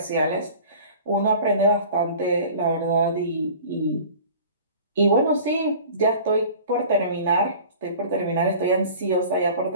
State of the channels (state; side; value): inverted; both; correlation -0.43